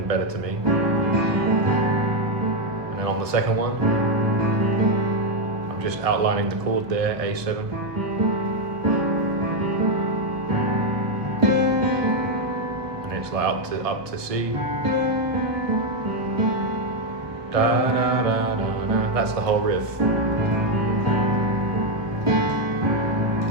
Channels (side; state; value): left; late; 1.2 ms